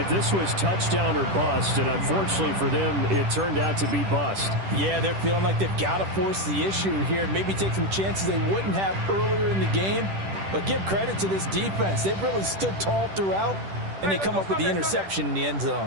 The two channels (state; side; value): late; left; 10 ms